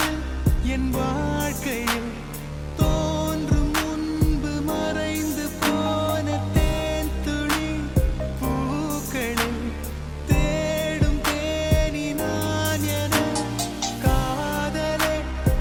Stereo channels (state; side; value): identical; both; correlation 1.00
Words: என் வாழ்க்கையில் தோன்றும் முன்பு மறைந்து போன தேன் துளி பூக்களில் தேடும் தேனி நான் என காதலே